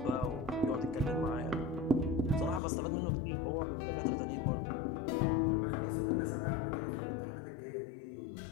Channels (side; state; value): right; drops out; at 2.6 s